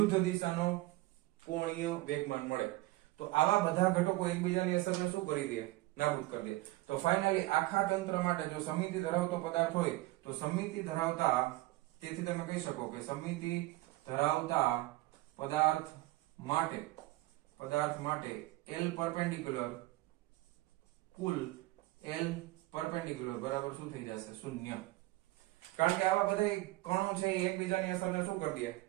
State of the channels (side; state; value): left; quieter; 19.3 dB